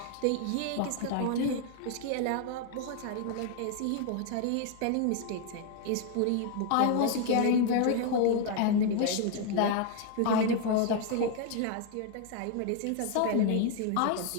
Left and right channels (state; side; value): different; both; correlation 0.00